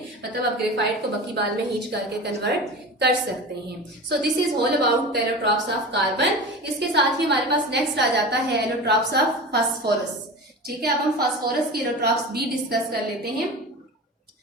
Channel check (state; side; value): normal; both; correlation 0.31